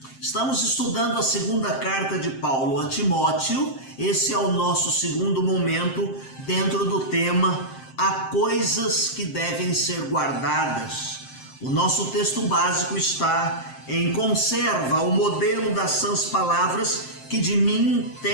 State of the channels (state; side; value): late; right; 7.6 ms